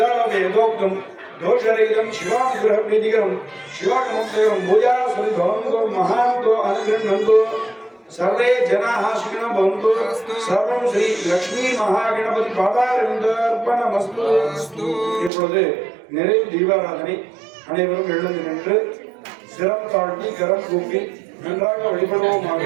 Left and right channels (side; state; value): left; drops out; at 15.3 s